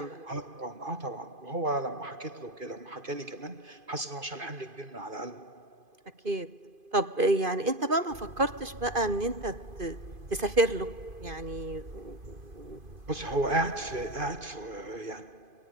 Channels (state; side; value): late; left; 2.5 ms